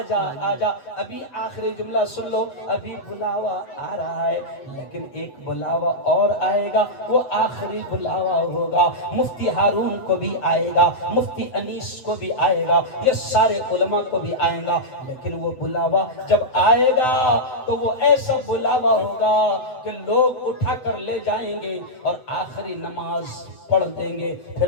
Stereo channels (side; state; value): right; late; 7.9 ms